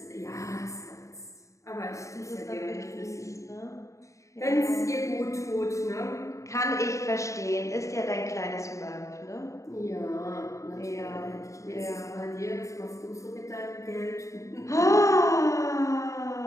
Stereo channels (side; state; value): right; late; 0.15 ms